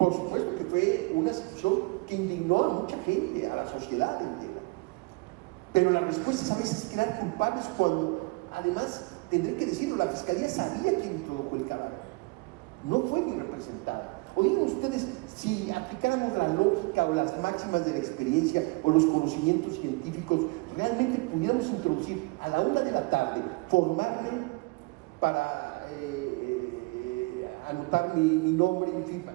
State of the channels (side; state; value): left; quieter; 26.2 dB